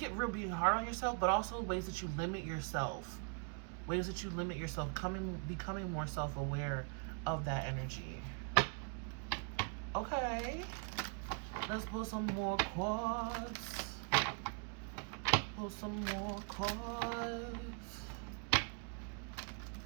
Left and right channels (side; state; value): left; quieter; 39.5 dB